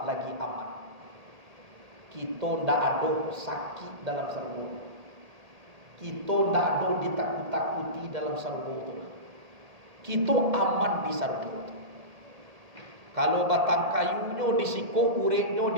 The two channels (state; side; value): late; left; 1.8 ms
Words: lagi aman. Kita ndak ada sakit dalam surga. Kita ndak ada ditakut-takuti dalam surga itu. Kita aman di surga. Kalau batang kayunya disiko, uretnya